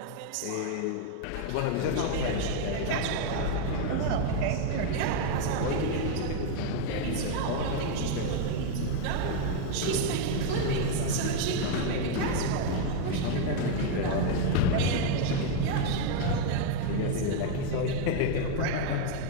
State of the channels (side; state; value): both; different; correlation 0.01